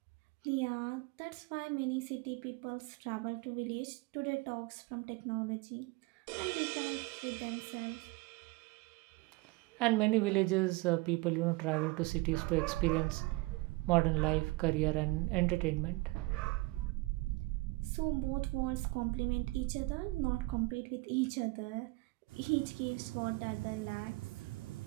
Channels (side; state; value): left; quieter; 23.0 dB